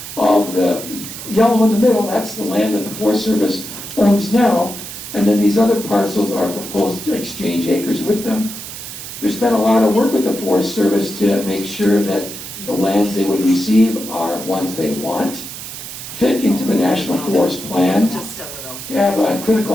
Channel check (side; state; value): right; noise; hiss, 10 dB below the sound